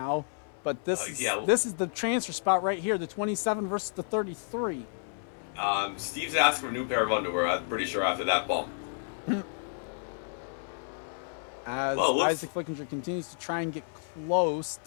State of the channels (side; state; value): right; silent; 57 dB below the other